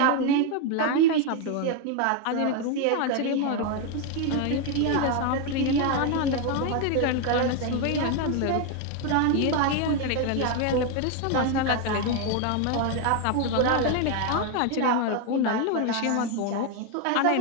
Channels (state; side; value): different; both; correlation 0.01